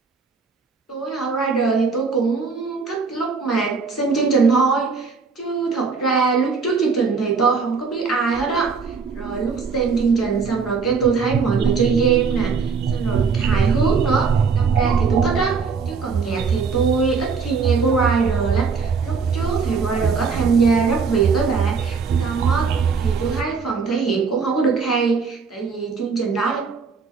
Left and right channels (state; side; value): quieter; left; 5.1 dB